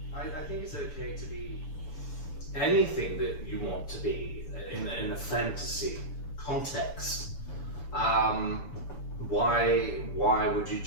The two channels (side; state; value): right; late; 6.9 ms